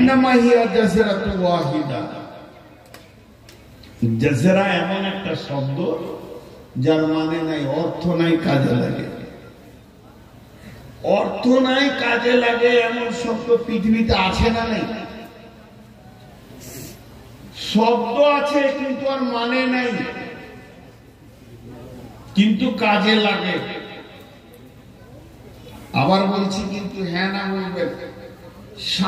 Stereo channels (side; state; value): both; identical; correlation 1.00